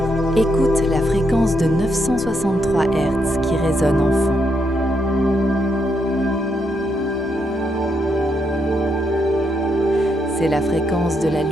Écoute la fréquence de 963 Hz qui résonne en fond. C'est la fréquence de la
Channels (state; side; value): normal; both; correlation 0.78